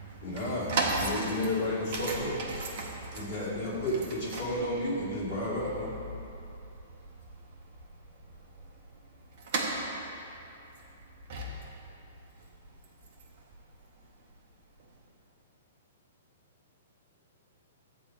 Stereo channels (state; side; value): inverted; both; correlation -0.33